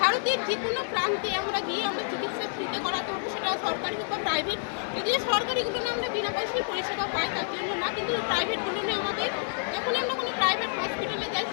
ভারতের যে কোনো প্রান্তে আমরা গিয়ে আমরা চিকিৎসা ফ্রিতে করাতে পারবো, সেটা সরকারি হোক বা প্রাইভেট। যদিও সরকারিগুলো আমরা বিনা পয়সায় পরিষেবা পাই, তার জন্য না, কিন্তু প্রাইভেটগুলো আমাদের যখনই আমরা কোনো প্রাইভেট হসপিটালে যাই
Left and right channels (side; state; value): right; silent; 59 dB below the other